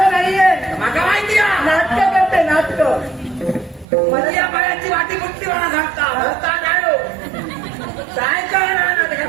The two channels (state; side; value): drops out; left; at 3.9 s